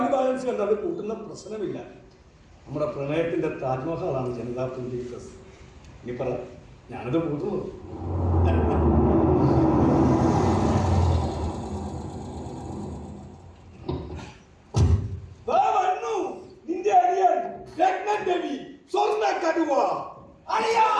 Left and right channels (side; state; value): both; identical; correlation 1.00